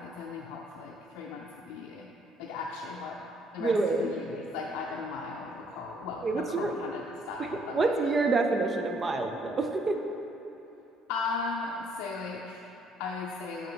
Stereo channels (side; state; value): both; normal; correlation 0.66